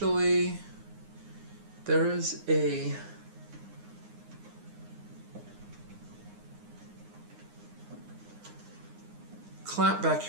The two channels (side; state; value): left; late; 9.7 ms